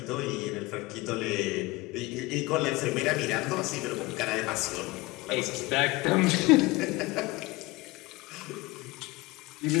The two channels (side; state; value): right; quieter; 22.1 dB